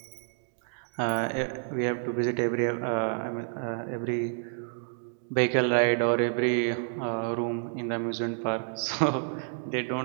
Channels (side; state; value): left; silent; digital silence